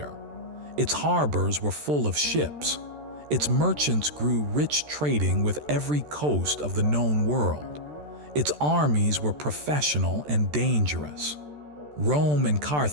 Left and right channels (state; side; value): late; left; 13 ms